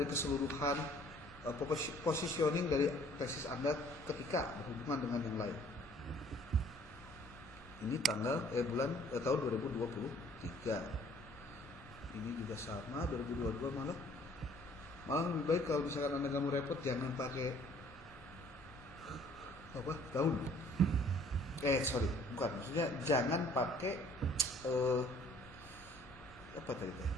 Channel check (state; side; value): normal; both; correlation 0.57